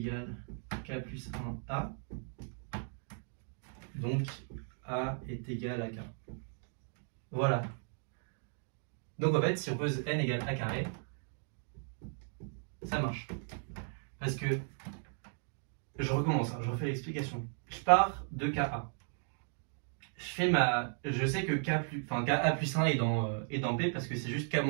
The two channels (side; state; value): left; silent; 54 dB below the other